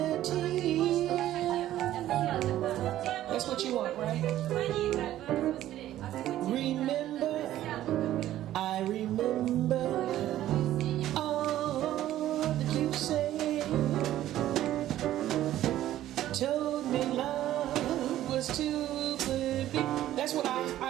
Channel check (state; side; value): quieter; left; 13.3 dB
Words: a tear. That's what you want, right? Remember, I remember all that you said. Told me love was too good. That's what